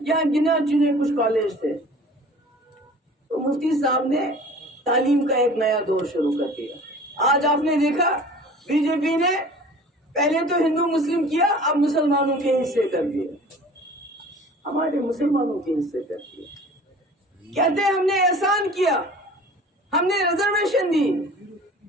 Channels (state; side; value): normal; both; correlation 0.45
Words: यहाँ गिने चुने कुछ कॉलेज थे। तो मुफ्ती साहब ने तालीम का एक नया दौर शुरू कर दिया। आज आपने देखा बीजेपी ने पहले तो हिंदू मुस्लिम किया, अब मुसलमानों के हिस्से कर दिए, हमारे मुसलमानों के हिस्से कर दिए। कहते हैं हमने एहसान किया, हमने रिजर्वेशन दी।